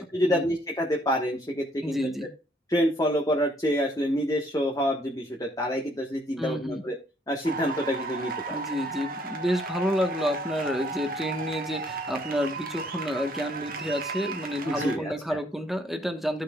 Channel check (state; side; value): normal; both; correlation 0.65